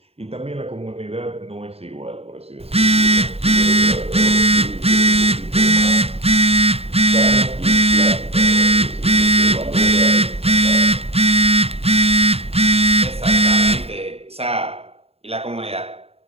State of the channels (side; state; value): left; late; 0.29 ms